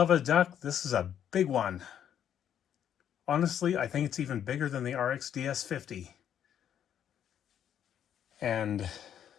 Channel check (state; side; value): quieter; right; 9.6 dB